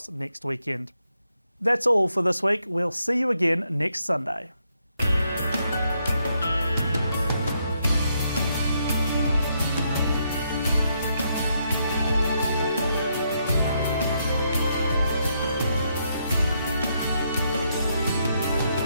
next weekend. That's all for this week. We'll see you again next Sunday.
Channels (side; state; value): both; inverted; correlation -0.77